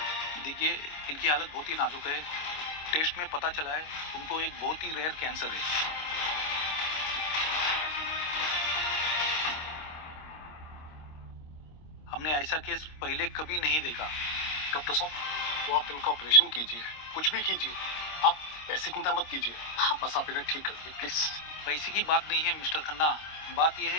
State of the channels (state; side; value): late; right; 26 ms